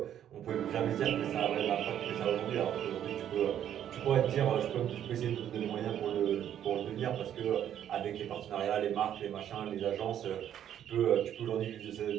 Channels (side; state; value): left; quieter; 10.3 dB